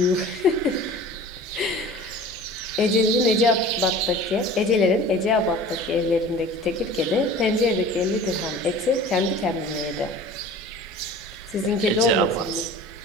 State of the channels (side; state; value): both; normal; correlation 0.41